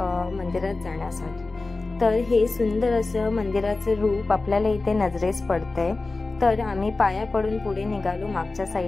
मंदिरात जाण्यासाठी. तर हे सुंदर असं मंदिराचं रूप आपल्याला इथे नजरेस पडतंय. तर आम्ही पाया पडून पुढे निघालो मागच्या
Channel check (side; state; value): right; quieter; 3.5 dB